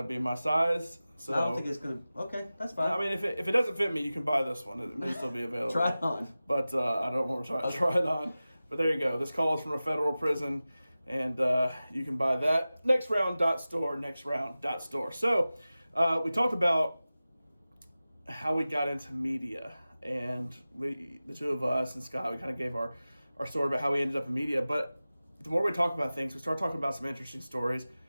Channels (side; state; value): both; inverted; correlation -0.96